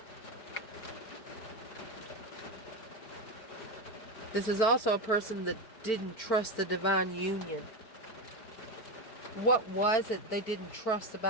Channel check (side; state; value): right; late; 4.9 ms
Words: This is also a person that didn't trust the divine union. What was it they didn't trust